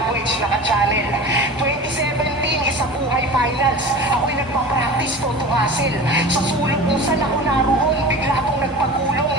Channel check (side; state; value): both; normal; correlation 0.35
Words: naka-channel. 2017 isa buhay finals. Ako'y nagpa-practice to hustle. Sa sulok kung saan ako naroon, bigla akong nagpagulong